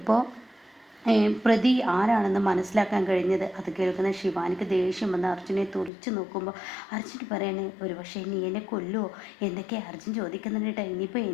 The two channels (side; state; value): right; drops out; at 5.9 s